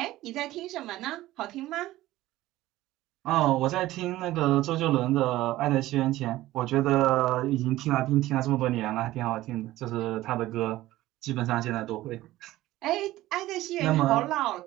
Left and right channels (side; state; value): left; quieter; 16.2 dB